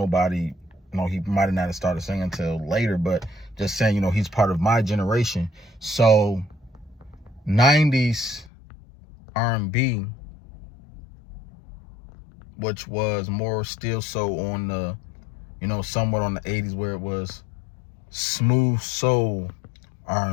you know, he might have not started singing until later, but just saying, you know, he's part of my generation. So 90s R&B, which was more still so on the, you know, somewhat on the 80s, where it was smooth soul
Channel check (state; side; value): drops out; right; at 8.5 s